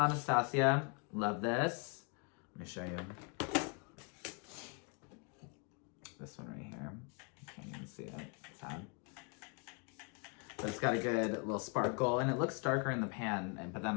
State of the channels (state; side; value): quieter; right; 35.0 dB